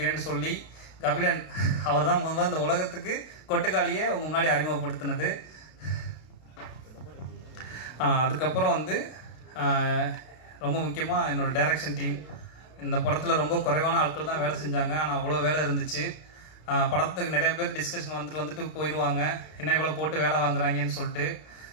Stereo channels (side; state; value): right; late; 32 ms